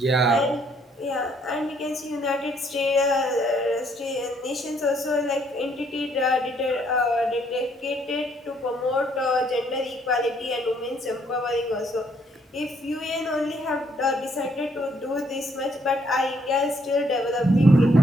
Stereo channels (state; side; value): normal; both; correlation 0.68